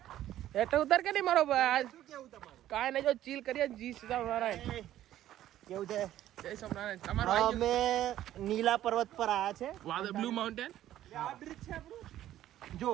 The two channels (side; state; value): left; quieter; 12.8 dB